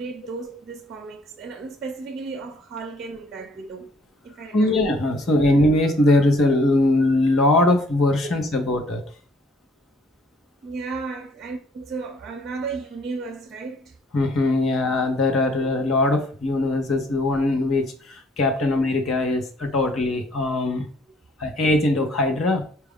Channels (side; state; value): both; normal; correlation 0.61